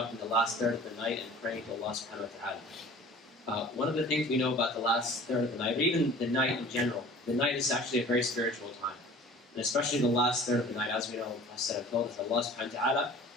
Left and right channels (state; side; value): normal; both; correlation 0.45